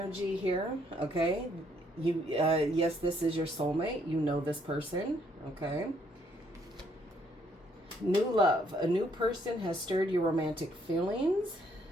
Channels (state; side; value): normal; both; correlation 0.68